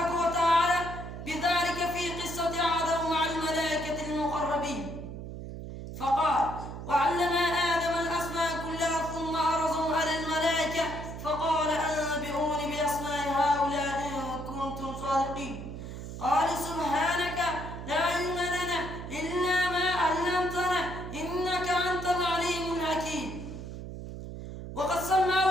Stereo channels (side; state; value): right; noise; hum, 9 dB below the sound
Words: وتعالى بذلك في قصة آدم مع الملائكة المقربين، فقال: وعلم آدم الأسماء كلها ثم عرضهم على الملائكة فقال: أنبئوني بأسماء هؤلاء إن كنتم صادقين. قالوا: سبحانك لا علم لنا إلا ما علمتنا إنك أنت العليم الحكيم. وقد سماه